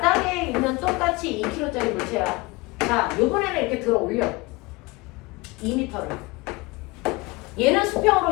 있는 똑같이 2kg짜리 물체야. 자, 요번에는 이렇게 들어 올려. 2m를. 얘는 수평으로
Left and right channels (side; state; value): right; quieter; 24.0 dB